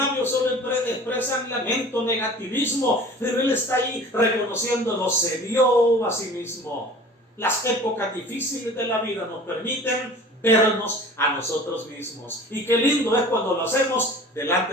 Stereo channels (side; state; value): both; normal; correlation 0.43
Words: solo expresan lamento, negativismo, pero él está ahí reconociéndolo, se vio a sí mismo. Las épocas difíciles de la vida nos permiten vernos a nosotros mismos, y qué lindo es cuando lo hacemos